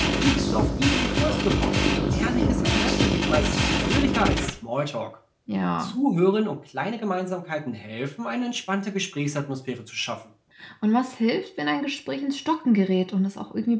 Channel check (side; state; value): both; identical; correlation 1.00